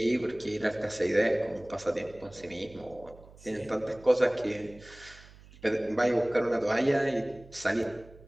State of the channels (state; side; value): noise; right; hum, 22 dB below the sound